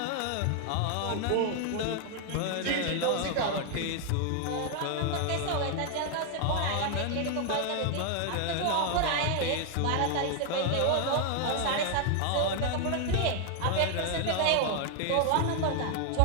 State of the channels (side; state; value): both; different; correlation 0.00